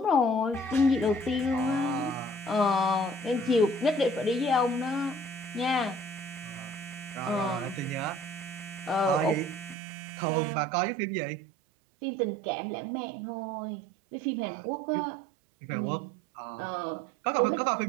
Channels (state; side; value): drops out; left; at 9.8 s